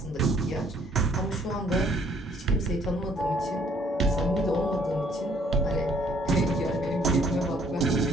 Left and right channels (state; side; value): normal; both; correlation 0.62